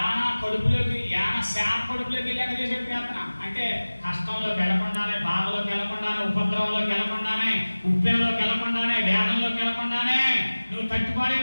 శాప కడుపులోకి వెళ్ళాక చేసే ప్రార్థన అంటే కష్టంలోకి వెళ్ళకుండానే, బాధలోకి వెళ్ళకుండానే, ఉపద్రవంలోకి వెళ్ళకుండానే, ఉప్పెనలోకి వెళ్ళకుండానే, వేదంలోకి వెళ్ళకుండానే, నువ్వు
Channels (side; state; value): both; inverted; correlation -1.00